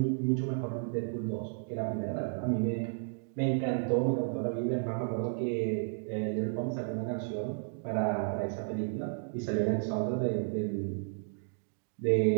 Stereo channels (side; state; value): left; silent; digital silence